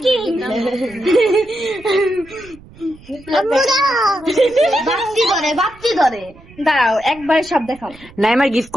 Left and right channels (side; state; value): right; noise; rumble, 23 dB below the sound